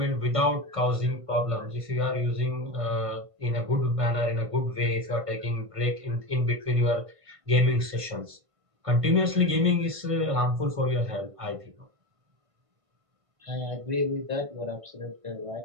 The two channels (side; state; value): left; late; 1.5 ms